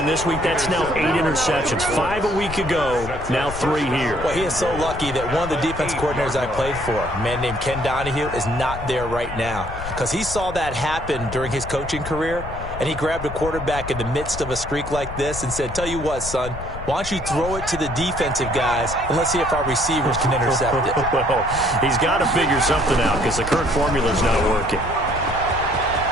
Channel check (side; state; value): left; noise; rumble, 10 dB below the sound